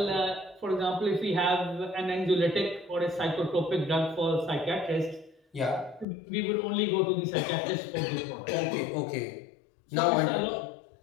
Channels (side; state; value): right; drops out; at 6.1 s